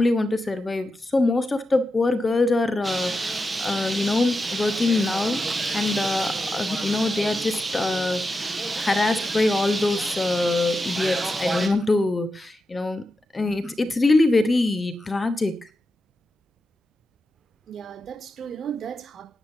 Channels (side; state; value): both; normal; correlation 0.89